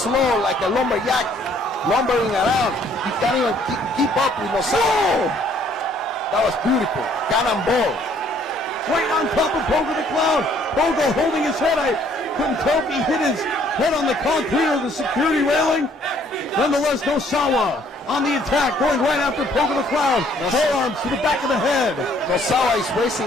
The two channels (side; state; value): both; normal; correlation 0.62